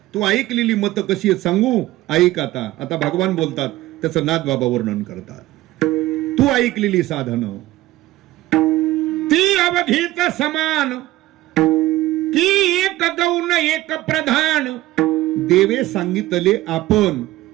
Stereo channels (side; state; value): left; quieter; 16.7 dB